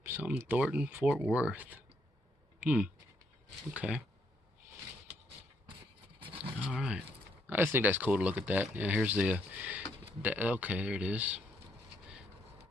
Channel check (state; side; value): normal; both; correlation 0.73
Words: Something Thornton, Fort Worth. Okay. Alright. I just think that's cool to look at that. Yeah, here's the okay, there it is.